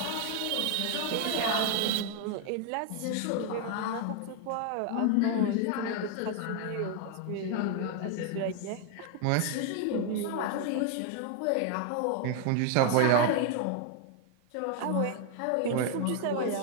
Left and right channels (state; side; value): different; both; correlation 0.00